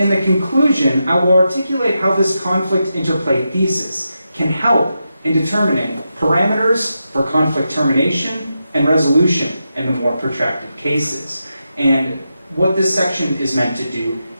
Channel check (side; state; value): both; inverted; correlation -0.87